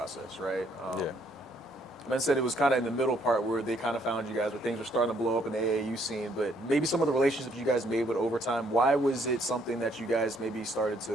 right? Yeah. Men said it was kind of in the middle part where they kind of found you guys, where things were starting to blow up in the AAU scene, but maybe some of the relationships you guys made with overtime, why was it something that you guys maybe started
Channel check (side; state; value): both; normal; correlation 0.68